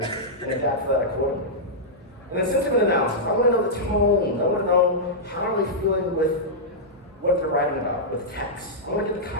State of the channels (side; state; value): both; normal; correlation -0.11